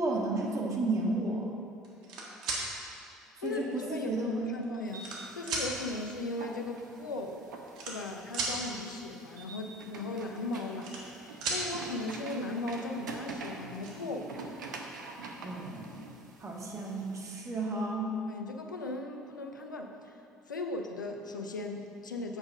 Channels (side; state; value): both; normal; correlation 0.40